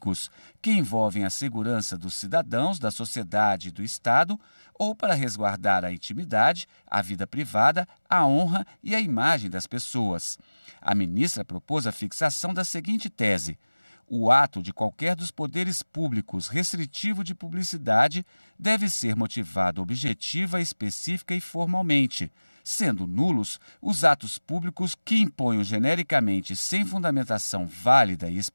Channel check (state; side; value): inverted; both; correlation -1.00